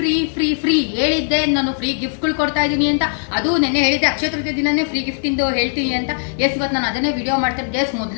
free free ಹೇಳಿದ್ದೆ, ನಾನು free ಗಿಫ್ಟ್ಗಳು ಕೊಡ್ತಾ ಇದ್ದೀನಿ ಅಂತ. ಅದು ನೆನ್ನೆ ಹೇಳಿದ್ದೆ, ಅಕ್ಷಯ ತೃತೀಯ ದಿನನೇ ಫ್ರೀ ಗಿಫ್ಟ್ ಇಂದು ಹೇಳ್ತೀನಿ ಅಂತ. ಎಸ್, ಇವತ್ತು ನಾನು ಅದನ್ನೇ ವಿಡಿಯೋ ಮಾಡ್ತೇನೆ. ಎಸ್,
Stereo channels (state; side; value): silent; right; digital silence